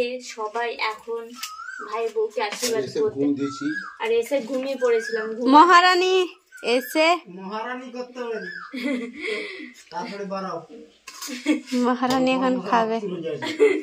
সবাই এখন ভাই বউকে আশীর্বাদ করতে। আর এসে ঘুমিয়ে পড়েছিলাম। মহারানী এসে করতে হবে, তারপরে বাড়াও। মহারানী এখন খাবে,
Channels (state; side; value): identical; both; correlation 1.00